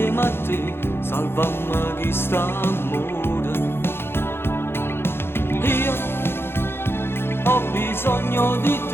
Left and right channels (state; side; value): late; right; 0.11 ms